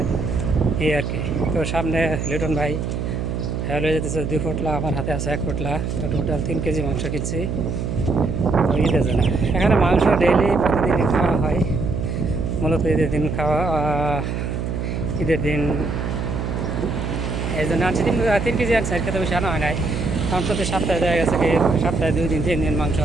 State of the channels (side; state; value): right; noise; hum, 3 dB below the sound